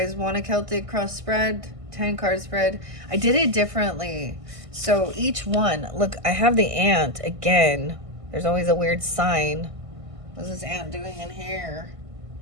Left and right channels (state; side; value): late; left; 1.5 ms